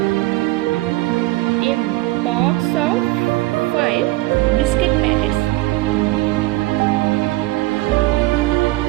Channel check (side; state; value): left; quieter; 19.5 dB